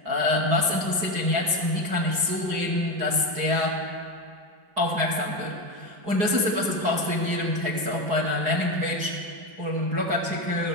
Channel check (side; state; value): left; late; 4.8 ms